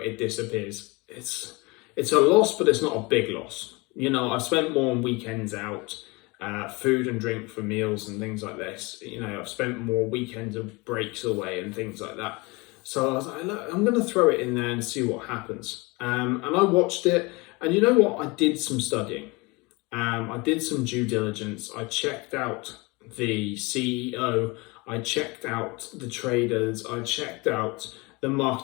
disappears. It's a loss, but it's not a big loss. You know, I've spent more on weekends out, food and drink for meals and things like this. You know, I've spent more weekends of breaks away and things like that. So I was like, look, I'm going to throw it in there and see what happens. And I watched it, and you know what? I did some studying. I did some due diligence. I checked out the CEO. I checked out the traders. I checked out the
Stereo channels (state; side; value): quieter; right; 25.9 dB